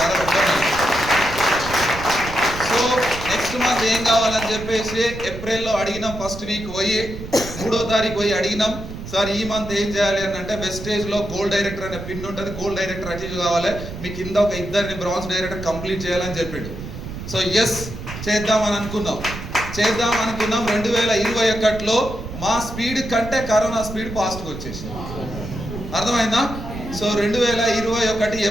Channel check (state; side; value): noise; right; rumble, 10 dB below the sound